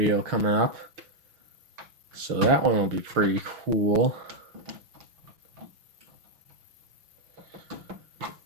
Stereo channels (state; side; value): late; left; 5.9 ms